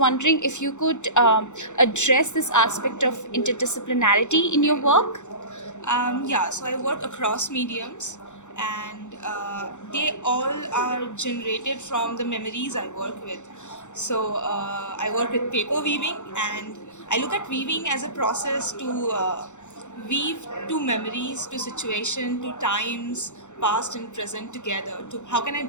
if you could address this aspect of interdisciplinarity in your work. So I work across mediums, and they all are generated from the memories I work with. I work with paper weaving, and I look at weaving as a process to weave two memories, to situation, to times past and present together. To how can I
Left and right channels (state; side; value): late; right; 0.84 ms